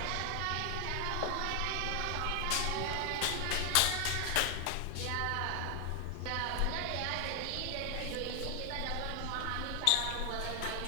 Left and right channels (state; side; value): different; both; correlation 0.00